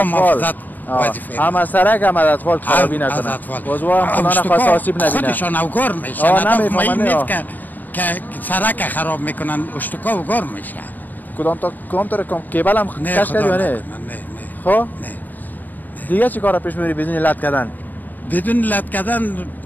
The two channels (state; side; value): late; right; 0.087 ms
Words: محافظت وظیفه. هم از سرک هم از اطفال خرابی نکنن. از اطفال. بازوها هم خدا نخواست آسیب نبینن. خودشان اوگار میشن. نمیفهمن نیست که سرک خراب میکنن اشتکا اوگار میشن. کدام طور کیبل هم کش کردی یا نه؟ نه. خب؟ نه. دیگه چی کارا پیش میبری بدون لط کردن؟ بدون لط کردن